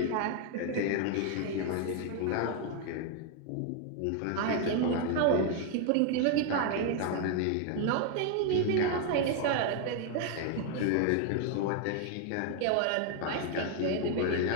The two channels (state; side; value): different; both; correlation 0.01